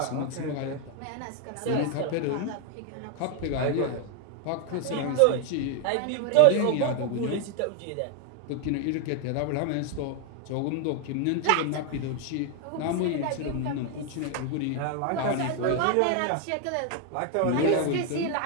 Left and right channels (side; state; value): both; different; correlation 0.01